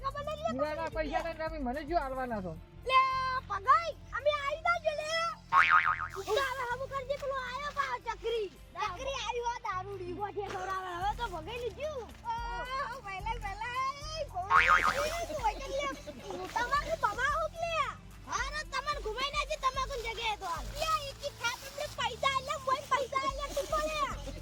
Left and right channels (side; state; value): both; identical; correlation 1.00